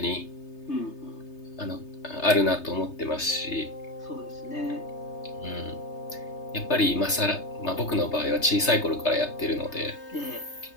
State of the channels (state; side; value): late; right; 3.3 ms